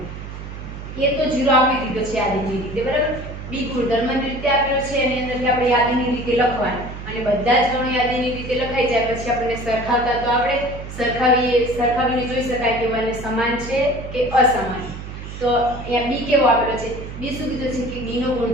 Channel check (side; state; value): right; noise; hum, 10 dB below the sound